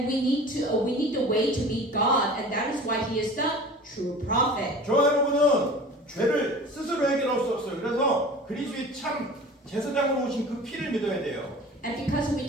we need the way to meet God, and that is why He is the true prophet. 저와 여러분은 죄를 스스로 해결할 수 없어요. 그래서 그리스도의 참 제사장으로 오신 그 피를 믿어야 돼요. And because we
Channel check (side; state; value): both; normal; correlation 0.40